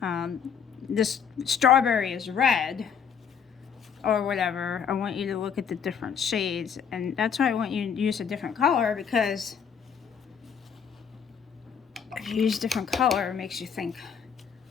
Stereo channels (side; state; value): right; quieter; 7.2 dB